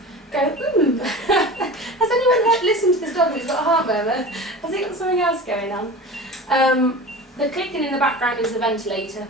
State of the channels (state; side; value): normal; both; correlation 0.34